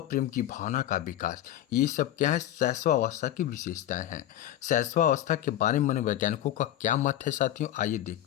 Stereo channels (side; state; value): right; quieter; 12.6 dB